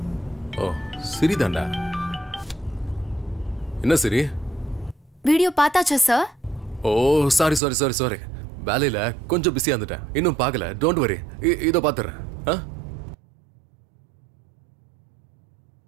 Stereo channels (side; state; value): left; drops out; at 7.6 s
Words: ஓ, சரிதான்டா. என்ன சரி? வீடியோ பார்த்தாச்சா சார்? ஓ, சாரி சாரி சாரி சாரி. வேலையில கொஞ்சம் பிஸியா இருந்துட்டேன். இன்னும் பார்க்கல. டோன்ட் வரி, இதோ பார்த்துறேன்.